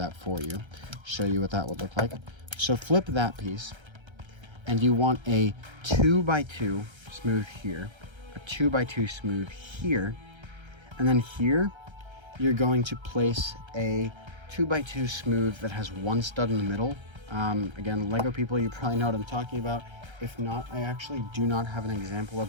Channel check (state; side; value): late; left; 1.3 ms